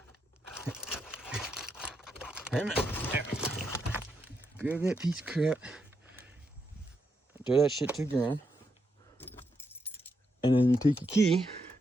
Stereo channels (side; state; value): both; normal; correlation 0.81